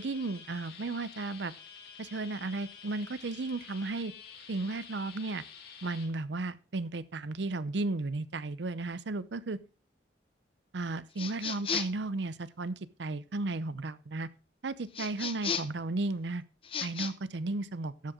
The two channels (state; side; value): normal; both; correlation 0.48